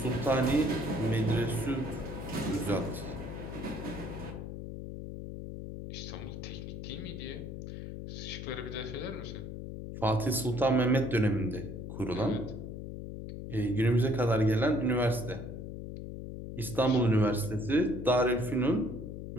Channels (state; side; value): noise; left; hum, 8 dB below the sound